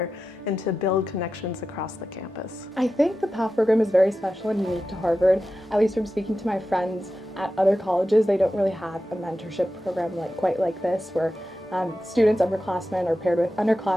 and to build connections across the campus. I think the PAF program is very special and unique to Harvard. At least from speaking to my friends at other colleges, they don't really have a mentorship program quite like this, where students, upperclassmen, are paired with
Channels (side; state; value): both; normal; correlation 0.92